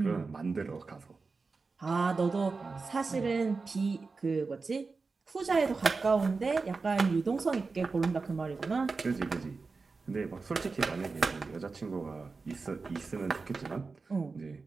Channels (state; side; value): quieter; left; 4.3 dB